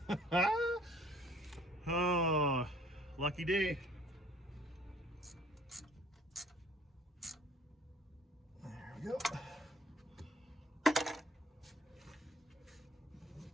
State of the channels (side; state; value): both; normal; correlation 0.55